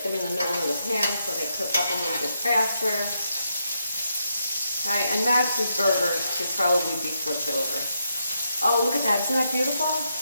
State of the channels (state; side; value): inverted; both; correlation -0.80